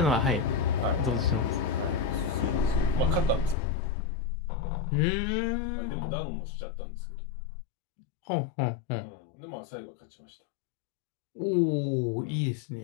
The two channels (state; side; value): drops out; right; at 3.6 s